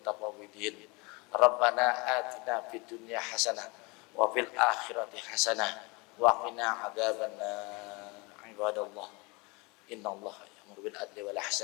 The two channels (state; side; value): quieter; right; 27.2 dB